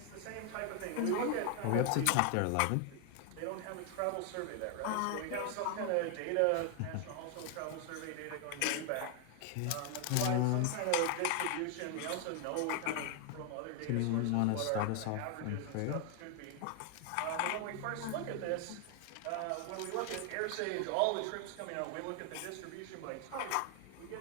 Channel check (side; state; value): both; different; correlation 0.00